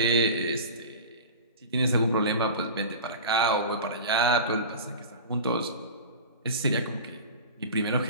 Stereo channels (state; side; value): inverted; both; correlation -0.33